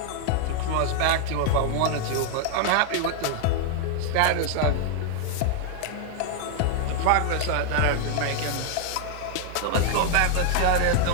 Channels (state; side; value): different; both; correlation 0.00